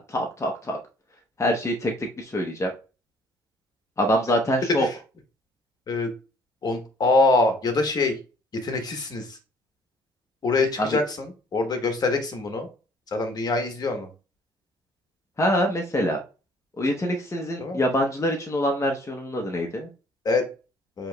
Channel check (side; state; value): both; normal; correlation 0.57